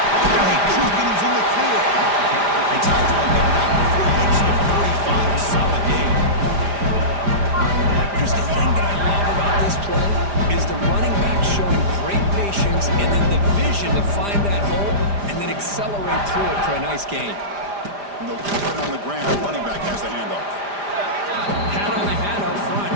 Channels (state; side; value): late; left; 5.0 ms